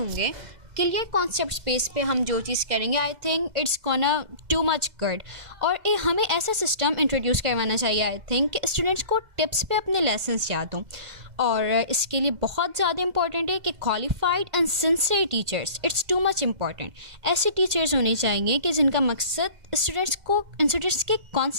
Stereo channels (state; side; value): late; left; 2.0 ms